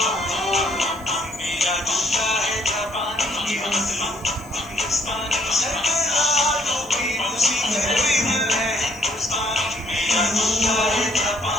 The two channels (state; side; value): noise; left; hiss, 24 dB below the sound